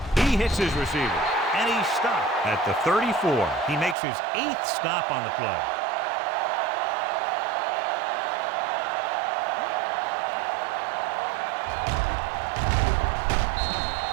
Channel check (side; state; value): left; drops out; at 4.0 s